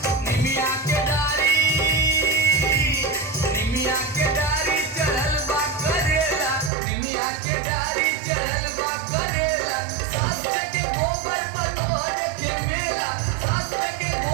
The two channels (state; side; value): drops out; left; at 6.7 s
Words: निमिया के डारी चढ़ल बा करेला, निमिया के डारी चढ़ल बा करेला। सास के गोबर पतोहर के मेला, सास के